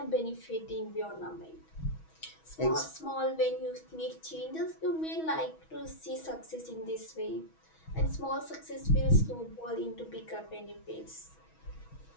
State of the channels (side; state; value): right; late; 6.2 ms